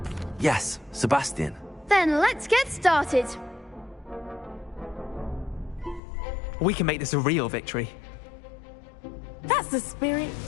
Yes, Sebastian. Then let's get started. We can make this a real victory. That's the spirit.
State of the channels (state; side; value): drops out; right; at 6.0 s